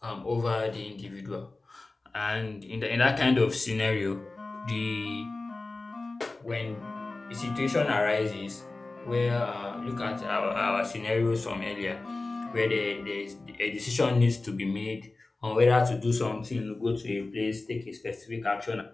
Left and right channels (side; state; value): right; quieter; 3.3 dB